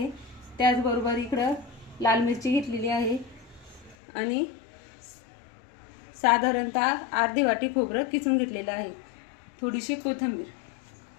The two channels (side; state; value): right; drops out; at 4.0 s